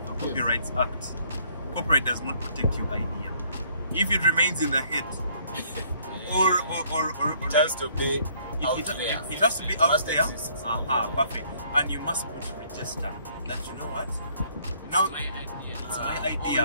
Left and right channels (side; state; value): both; inverted; correlation -0.63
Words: the Copyrights Act, copyright does not protect your idea. If it remains in the head, or it has to be out there. It has to be out there. Exist. Perfect. And you must put register that you know what? Now it's my